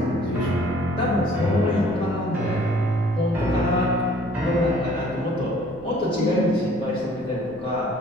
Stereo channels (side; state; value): left; noise; rumble, 25 dB below the sound